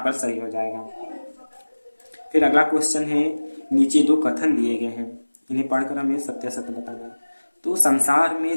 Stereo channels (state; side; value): inverted; both; correlation -1.00